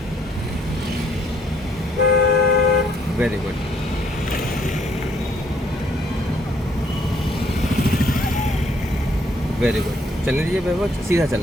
वेरी गुड। वेरी गुड, चलने दीजिए वैभव, सीधा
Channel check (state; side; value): normal; both; correlation 0.67